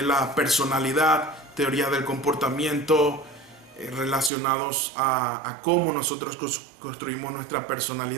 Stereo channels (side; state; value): left; drops out; at 4.3 s